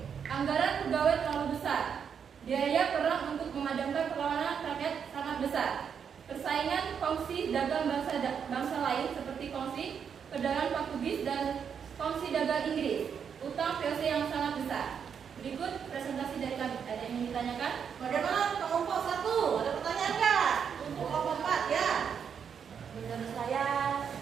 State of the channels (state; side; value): quieter; left; 7.3 dB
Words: Anggaran pegawai terlalu besar. Biaya perang untuk memadamkan perlawanan rakyat sangat besar. Persaingan kongsi dagang bangsa lain seperti kongsi perdagangan Portugis dan kongsi dagang Inggris. Utang POC yang sangat besar. Berikut presentasi dari kami. Ada yang ingin ditanyakan? Bagaimana kelompok 1? Ada pertanyaan nggak? Untuk kelompok 4 ya? Menurut saya